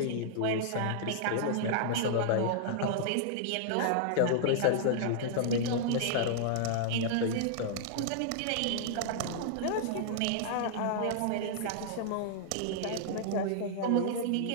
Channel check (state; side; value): different; both; correlation -0.01